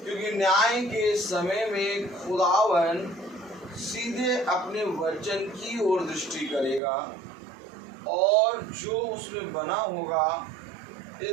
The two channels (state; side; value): drops out; left; at 6.8 s